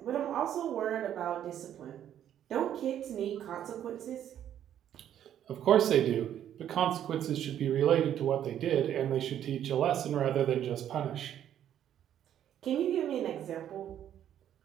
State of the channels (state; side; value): quieter; left; 10.5 dB